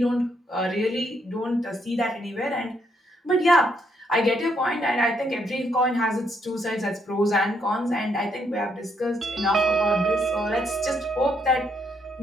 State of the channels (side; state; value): both; normal; correlation 0.74